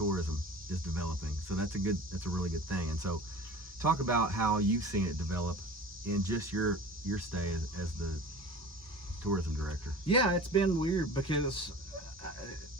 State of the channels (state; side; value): normal; both; correlation 0.39